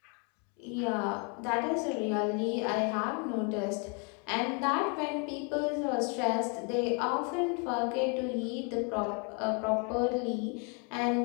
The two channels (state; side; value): quieter; right; 36.2 dB